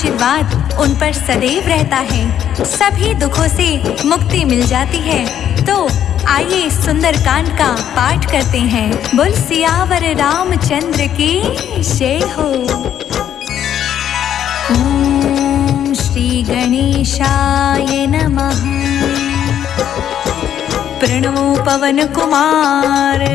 उन पर सदैव रहता है। सभी दुखों से मुक्ति मिल जाती है। तो आइए सुंदर कांड का पाठ करते हैं। बोल सियावर रामचंद्र की जय हो। ओम श्री गणेशाय नमः। प्रणमो पवन कुमार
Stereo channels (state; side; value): quieter; right; 10.1 dB